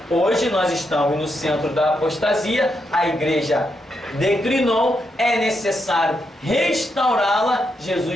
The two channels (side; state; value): both; normal; correlation 0.82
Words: Hoje nós estamos no centro da apostasia, a igreja declinou, é necessário restaurá-la.